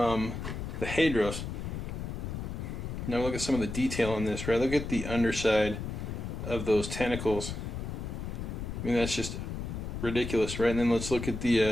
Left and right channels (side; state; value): left; noise; rumble, 5 dB below the sound